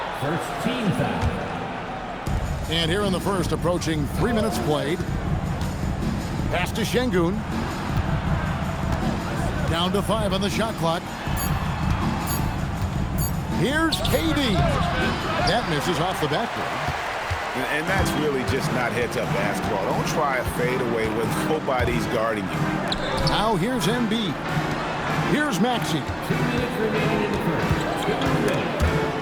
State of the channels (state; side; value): identical; both; correlation 1.00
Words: First team foul. And here in the first, approaching 3 minutes played. Pass to Şengün. Down to 5 on the shot clock. Here's KD. That misses off the backboard. And that's really just not heads-up basketball. Don't try a fadeaway when nobody's guarding you. Now here's Embiid. Here's Maxey. 2 minutes remaining in the